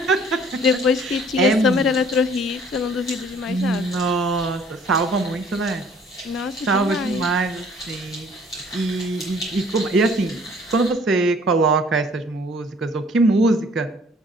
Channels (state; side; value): normal; both; correlation 0.56